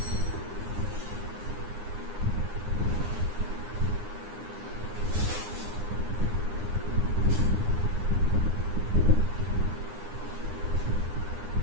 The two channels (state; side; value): late; left; 9.7 ms